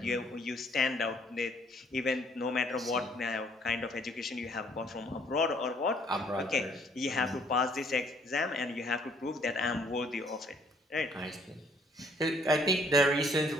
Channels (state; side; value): normal; both; correlation 0.63